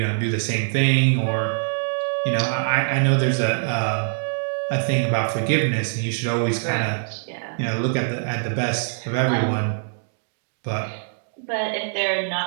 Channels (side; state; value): left; silent; digital silence